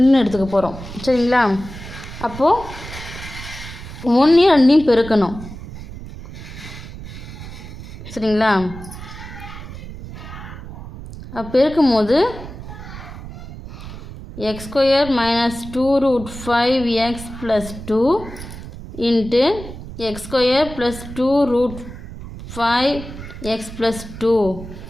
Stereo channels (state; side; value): noise; right; rumble, 12 dB below the sound